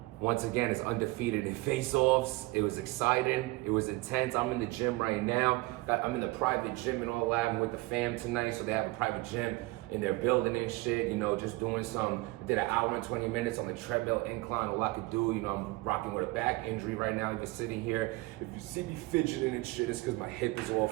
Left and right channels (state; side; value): quieter; left; 21.9 dB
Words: once again, is undefeated in face-offs. It was exciting. It was intense. I'm in the gym right now. I'm in the private gym and all that. I'm with the fam tonight, so they have a private gym in their building and shit. Just doing did an hour and 20 minutes on the treadmill incline. All I could do. I'm rocking with a back injury right now, even sitting here. If you see me fidgeting and shit, it's because my hip is all